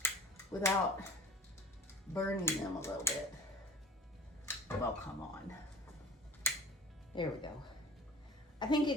without burning them a little bit. Well, come on. There we go. I think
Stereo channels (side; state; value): both; normal; correlation 0.42